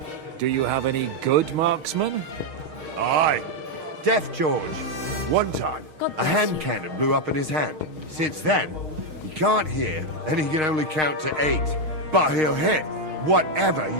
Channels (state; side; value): late; left; 6.4 ms